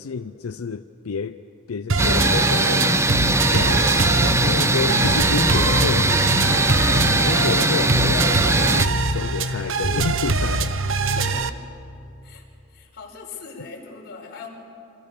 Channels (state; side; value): normal; both; correlation 0.16